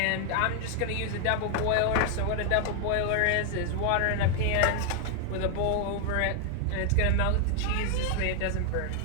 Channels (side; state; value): both; different; correlation 0.00